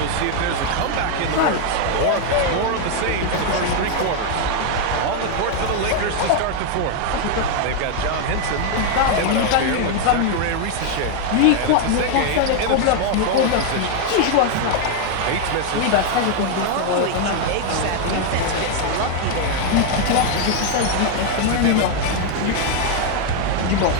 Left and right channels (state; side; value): different; both; correlation 0.00